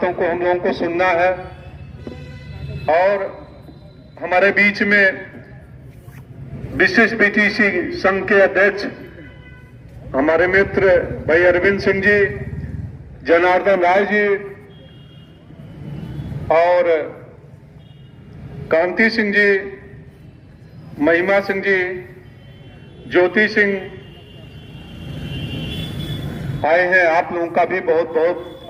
को हम लोगों को सुनना है। और हमारे बीच में विशिष्ट बीटीसी संघ के अध्यक्ष हमारे मित्र भाई अरविंद सिंह जी, जनार्दन राय जी और कांति सिंह जी, महिमा सिंह जी, ज्योति सिंह आए हैं। आप लोगों का भी बहुत बहुत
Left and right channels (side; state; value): both; identical; correlation 1.00